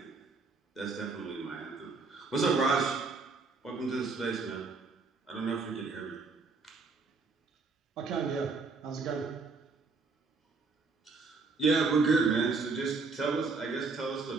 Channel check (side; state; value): left; quieter; 4.2 dB